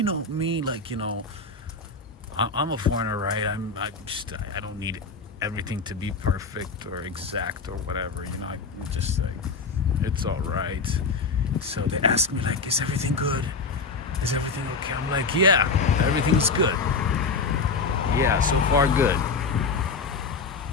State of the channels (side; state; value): right; quieter; 4.4 dB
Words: know, me, like, you know, I'm a foreigner, right? I don't need everything to be perfect or exact or whatever, you know. I'm just like, it's all right. So they ask me, like, is everything good? Is everything okay? I'm like, yeah, everything's good. Yeah, so far good.